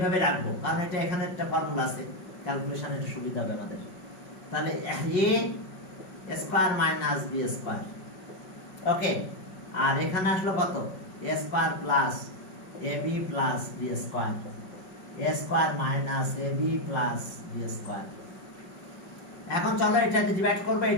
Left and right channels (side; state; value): right; late; 5.3 ms